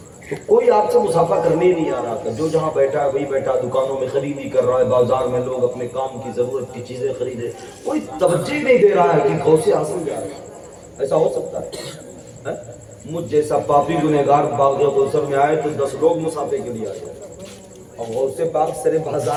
تو کوئی آپ سے مسافہ کرنے ہی نہیں آ رہا تھا، جو جہاں بیٹھا ہے وہی بیٹھا، دکانوں میں خریدی کر رہا ہے، بازار میں لوگ اپنے کام کی ضرورت کی چیزیں خریدے، کوئی توجہ نہیں دے رہا ہے کہ غوث اعظم جا رہا ہے۔ ایسا ہو سکتا ہے؟ مجھ جیسا پاپی گنہگار باغ کوثر میں آئے تو 10 لوگ مسافے کے لیے آئے، اور غوث پاک سرے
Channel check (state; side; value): identical; both; correlation 1.00